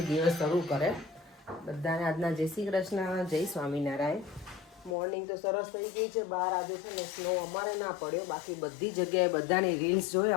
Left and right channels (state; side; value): drops out; right; at 5.0 s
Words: દિવસ શરૂ કરે. બધાને આજના જય શ્રી કૃષ્ણ, જય સ્વામિનારાયણ. મોર્નિંગ તો સરસ થઈ ગઈ છે. બહાર આજે છે ને સ્નો અમારે ના પડ્યો, બાકી બધી જગ્યાએ બધાની રીલ્સ જોઈ